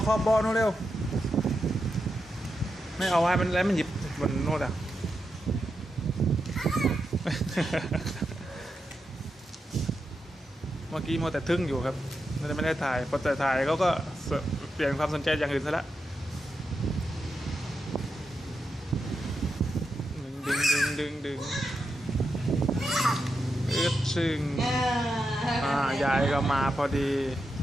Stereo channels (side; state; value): both; normal; correlation 0.87